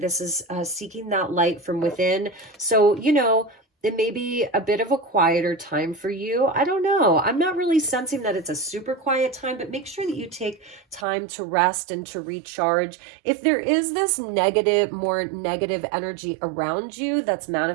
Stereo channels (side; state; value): left; drops out; at 11.1 s